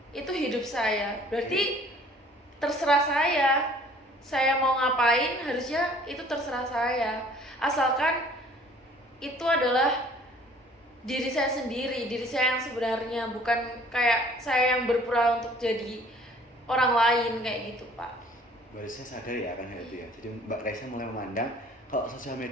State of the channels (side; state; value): both; normal; correlation 0.54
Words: Itu hidup saya. Berarti terserah saya mau ngapain, harusnya itu terserah saya, asalkan itu adalah diri saya sendiri, diri saya yang sebenarnya, bukan kayak saya yang berpura untuk jadi orang lain kayak gitu, Pak. Mbak Resya sadar ya akan hal itu ya. Jadi Mbak Resya mulai memandang kalau sosial